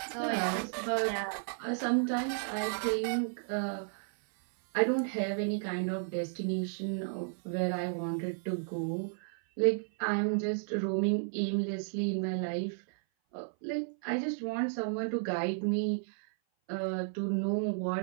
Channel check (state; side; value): silent; left; 56 dB below the other